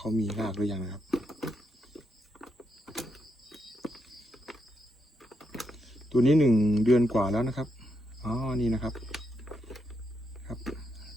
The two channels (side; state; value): both; normal; correlation 0.81